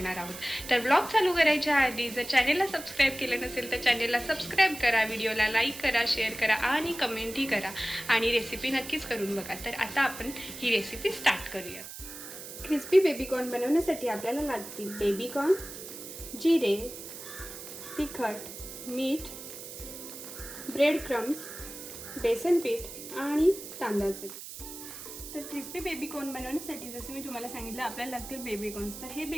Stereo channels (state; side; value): noise; right; hiss, 11 dB below the sound